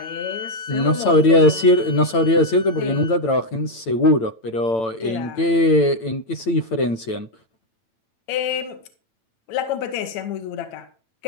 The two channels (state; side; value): late; right; 8.9 ms